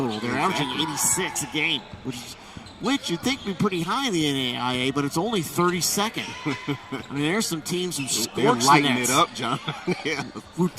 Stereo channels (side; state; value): both; identical; correlation 1.00